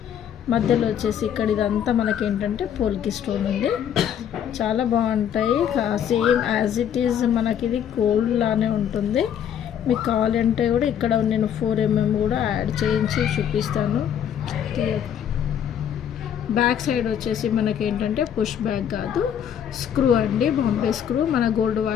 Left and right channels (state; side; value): quieter; right; 9.1 dB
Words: మధ్యలో వచ్చేసి ఇక్కడ ఇదంతా మనకేంటంటే పోల్కి స్టోన్ ఉంది. చాలా బాగుంటాయి. సేమ్ యాజ్ ఇట్ ఈజ్ మనకి ఇది గోల్డ్ లానే ఉంటుంది. మీకు కావాలంటే కూడా ఇక్కడ నేను 4mm కూడా యాడ్ చేయించి చూపిస్తాను. బ్యాక్ సైడ్ వచ్చేసి మనకేంటంటే పుష్ బ్యాక్ కాదు, స్క్రూ అండి, బాంబే స్క్రూ. మన గోల్డ్